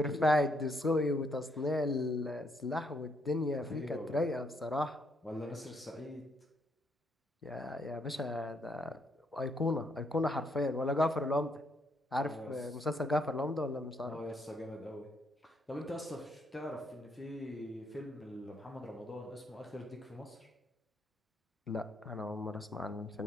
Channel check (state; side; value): normal; both; correlation 0.73